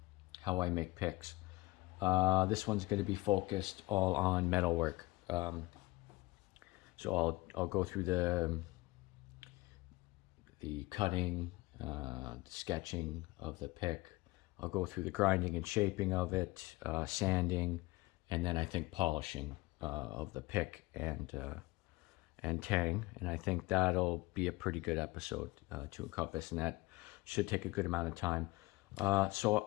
how I make picks. This one's going to be focused all on metalwork. So I'll go through the cutting, the sketching of the pick. I'll go through the grinding and shaping of it, sanding, and then I think polishing of the pick and tang. And I think that'll be a pretty good episode to encompass, and that should take a good amount of time. So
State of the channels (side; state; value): right; quieter; 20.5 dB